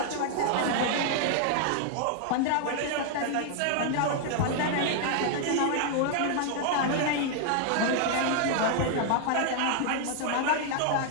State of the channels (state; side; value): different; both; correlation 0.00